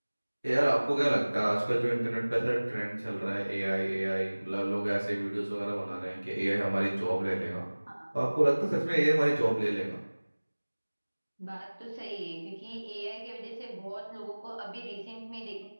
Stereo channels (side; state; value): both; inverted; correlation -1.00